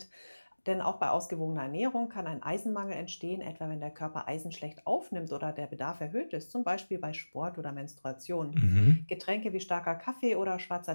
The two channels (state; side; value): inverted; both; correlation -1.00